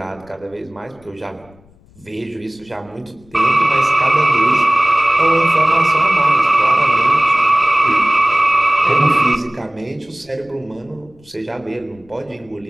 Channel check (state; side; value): noise; left; rumble, 28 dB below the sound